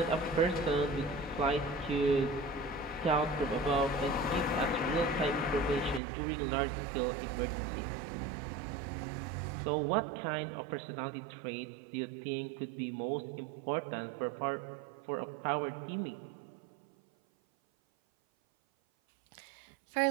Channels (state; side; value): drops out; left; at 6.0 s